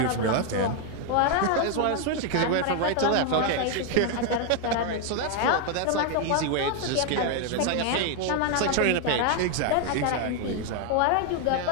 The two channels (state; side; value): different; both; correlation 0.01